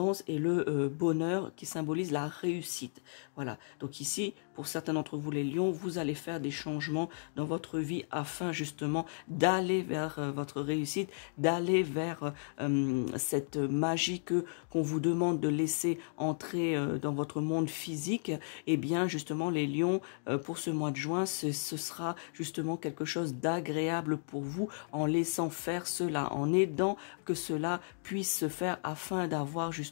et le bonheur, qui symbolise la réussite. Voilà, donc ici, pour certains d'entre vous les lions, vous allez faire des changements dans votre vie afin justement d'aller vers votre réussite, d'aller vers cette magie qu'on vous demande de laisser entrer dans votre monde physique. Et bien justement les lions, pour ce mois de juin, ce sera justement quelque chose d'agréable pour vous, en laissant faire cela, en aidant que cela puisse se faire afin d'avoir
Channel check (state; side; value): silent; right; digital silence